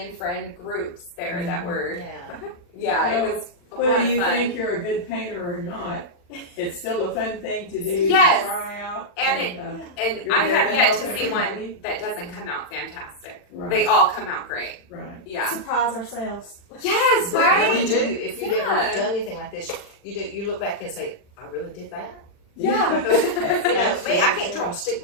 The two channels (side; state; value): right; late; 40 ms